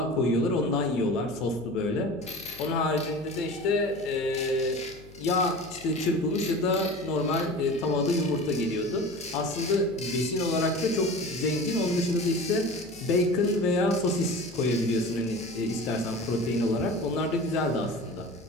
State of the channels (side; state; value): left; noise; hum, 20 dB below the sound